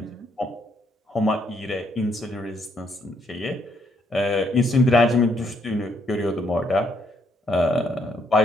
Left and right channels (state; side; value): normal; both; correlation 0.72